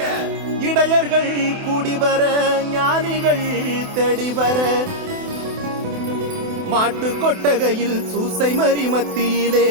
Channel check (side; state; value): left; late; 28 ms